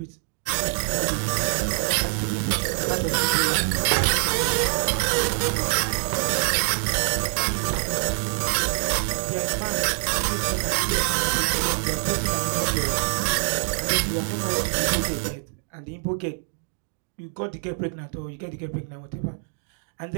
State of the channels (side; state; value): left; silent; 62 dB below the other